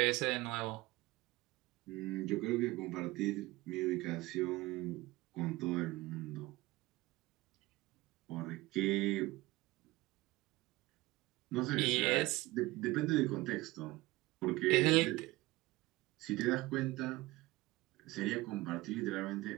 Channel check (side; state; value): left; quieter; 19.9 dB